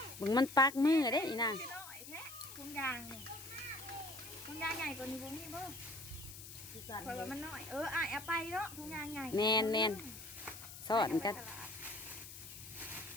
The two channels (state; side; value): noise; left; hiss, 13 dB below the sound